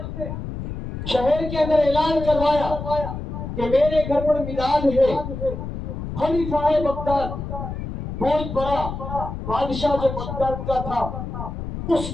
شہر کے اندر اعلان کروایا کہ میرے گھر پر میلاد ہے۔ خلیفہ بغداد بہت بڑا بادشاہ جو بغداد کا تھا، اس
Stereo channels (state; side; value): noise; left; rumble, 7 dB below the sound